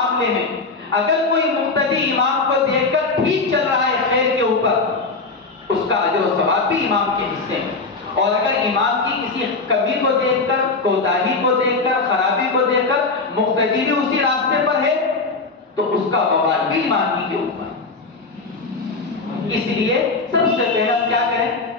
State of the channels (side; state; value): right; quieter; 3.9 dB